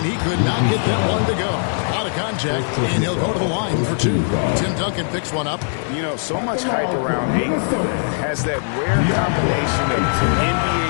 he could not get that one to go. A lot of contact, and he'll go to the line for 2. Tim Duncan picks one up. You know, so much hype around Ayton. Has that rare combination of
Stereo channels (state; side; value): silent; right; 66 dB below the other